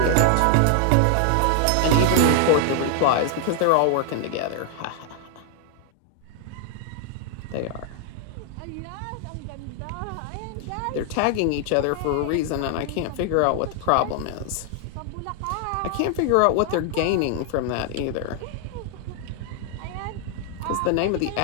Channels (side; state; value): both; different; correlation 0.00